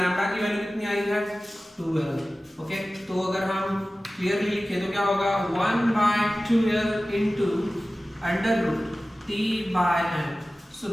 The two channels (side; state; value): both; normal; correlation 0.96